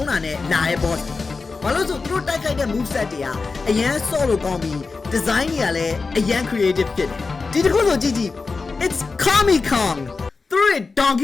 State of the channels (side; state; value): right; quieter; 4.3 dB